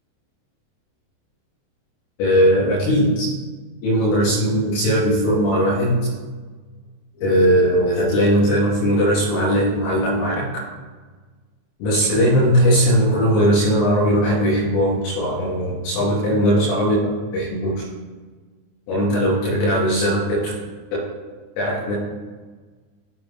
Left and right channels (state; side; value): late; right; 29 ms